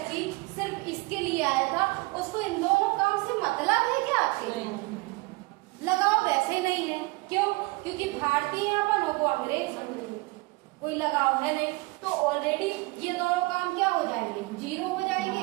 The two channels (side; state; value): left; quieter; 24.7 dB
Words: सिर्फ इसके लिए आया था उसको इन दोनों काम से मतलब है क्या आपके, लगाव वैसे ही नहीं है। क्यों, क्योंकि भारतीयपन को अंग्रेज कोई लगाव है नहीं। तो ऑलरेडी ये दोनों काम क्या हो जाएंगे,